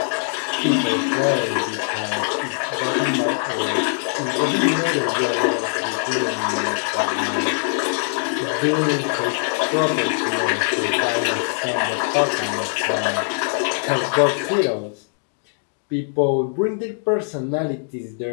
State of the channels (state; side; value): silent; right; digital silence